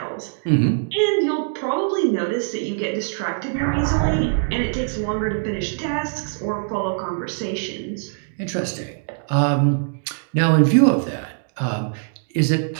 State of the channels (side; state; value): left; silent; digital silence